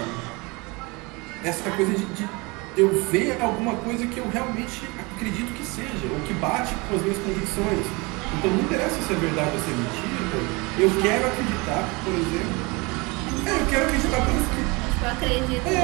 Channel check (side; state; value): left; quieter; 26.6 dB